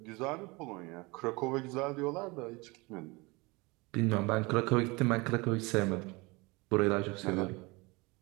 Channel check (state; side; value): quieter; left; 25.3 dB